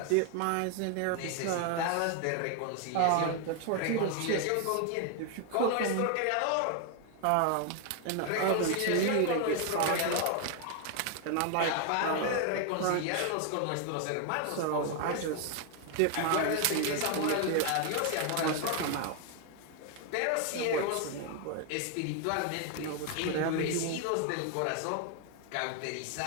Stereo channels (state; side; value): different; both; correlation 0.00